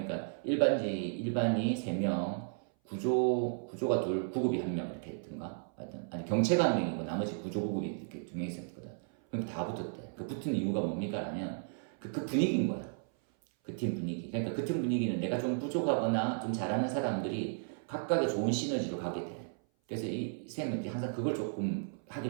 일반이 3명, 구조가 2, 구급이 1명 이렇게 했던가? 하여튼, 아니, 경체가 1명이고 나머지 구조, 구급이 이렇게 2명 있었거든. 그럼 다 붙었대. 그 붙은 이유가 뭡니까? 하면 그 분위기인 거야. 그 팀 분위기. 그러니까 그 팀 분위기는 내가 좀 부족하거나 좀 잘하는 사람들이 각각의 좋은 시너지로 가게 돼. 그래서 이 쌤은 항상 그걸 조금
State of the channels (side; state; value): left; silent; 55 dB below the other